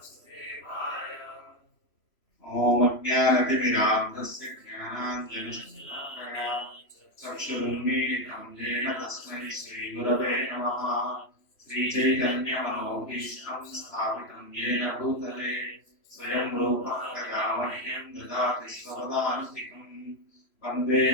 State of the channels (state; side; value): late; right; 3.0 ms